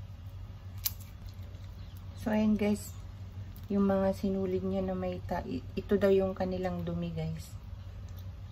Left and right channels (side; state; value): both; identical; correlation 1.00